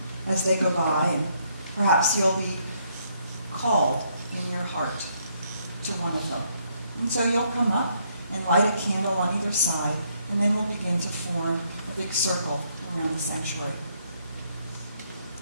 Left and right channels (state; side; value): inverted; both; correlation -0.71